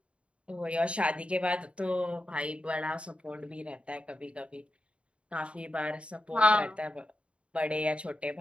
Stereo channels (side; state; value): left; late; 0.059 ms